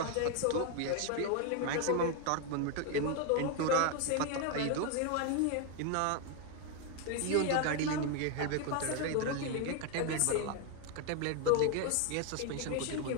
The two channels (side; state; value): both; different; correlation 0.01